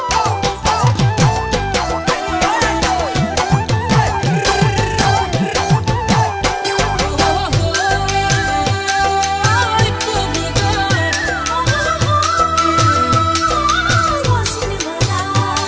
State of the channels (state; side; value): identical; both; correlation 1.00